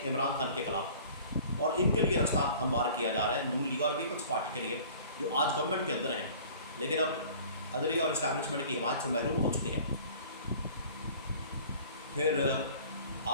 عمران خان کے خلاف، اور ان کے لیے راستہ ہموار کیا جا رہا ہے نون لیگ اور پیپلز پارٹی کے لیے جو آج گورنمنٹ کے اندر ہیں لیکن اب عدلیہ اور اسٹیبلشمنٹ کی حمایت سے محروم ہو چکے ہیں. پھر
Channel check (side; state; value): both; inverted; correlation -0.47